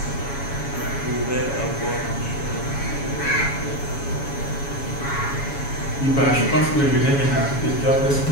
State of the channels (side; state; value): right; late; 7.1 ms